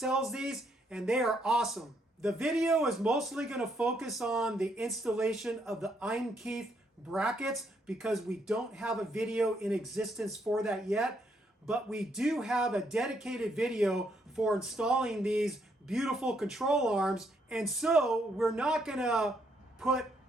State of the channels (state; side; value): normal; both; correlation 0.73